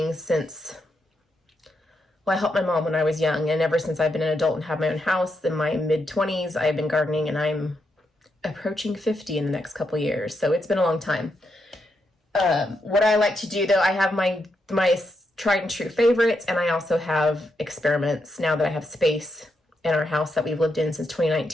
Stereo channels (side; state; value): both; normal; correlation 0.82